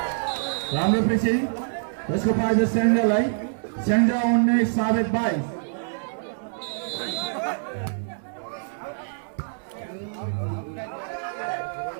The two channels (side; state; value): left; silent; digital silence